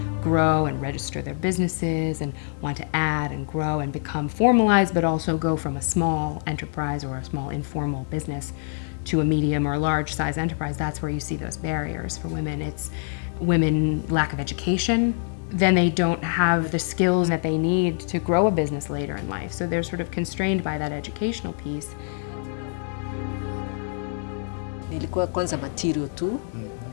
grow and register their businesses and want to add and grow and become formalized, but also go from a small enterprise or a small informal business to a medium or large size enterprise, that's where you see those barriers for women. It's women lack of education, then they don't have the skills that they need to grow a business later in life. So they're sort of constrained by that educational piece. Nilikuwa kwanza material tu.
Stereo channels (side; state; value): right; silent; 62 dB below the other